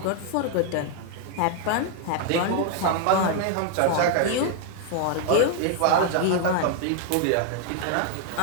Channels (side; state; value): both; different; correlation 0.00